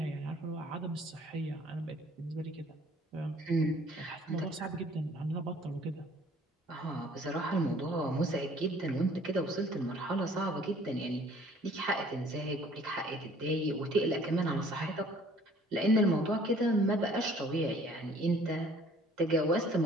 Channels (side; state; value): both; normal; correlation 0.55